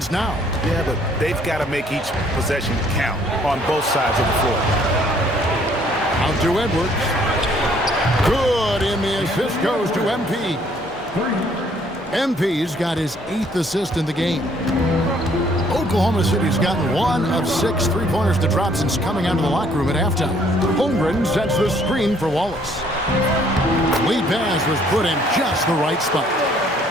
now. Yeah, but they've got to make each possession count on both sides of the floor. Out to Edwards. Good, and the assist goes to MP. MP's got his 8th assist in the game. Oklahoma City's gotten 1 of 6 3-pointers to drop since coming out of the locker room at halftime. Holmgren sets the screen for Wallace. Lead pass was put in just the right spot.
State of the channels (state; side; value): normal; both; correlation 0.63